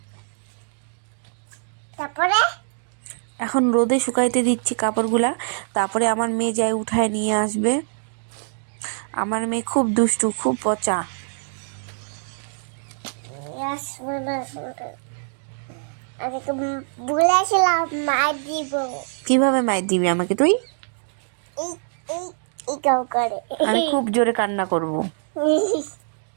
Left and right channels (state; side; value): silent; left; digital silence